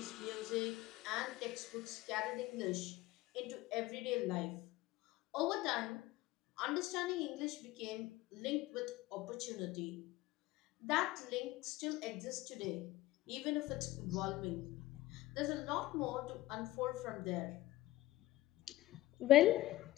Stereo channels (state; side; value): quieter; right; 16.9 dB